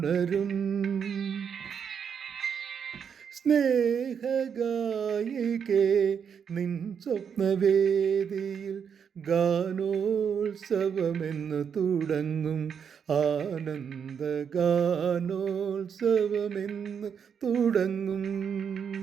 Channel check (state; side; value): quieter; left; 7.2 dB